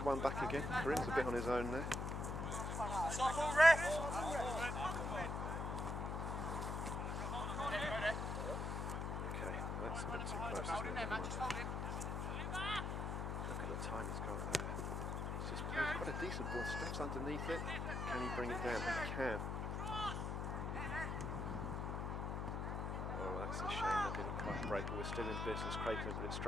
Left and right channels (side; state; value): left; noise; hum, 1 dB below the sound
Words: one back again. Karim's a bit on his own there. Okay, well that's a bit too close, isn't it? Never mind. Look at the time he's got there. He's just played quite a decent ball. Steph's underneath it. Can he bring it down? He can. Oh, that's a shame that didn't quite break, but we're still in business. Craig can put it